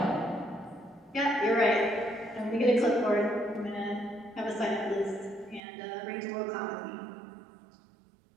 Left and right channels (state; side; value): drops out; left; at 5.6 s